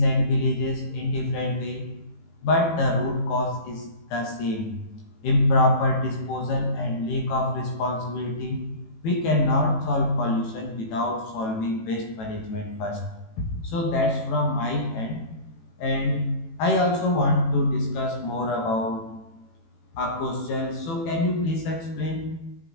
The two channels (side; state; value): right; late; 18 ms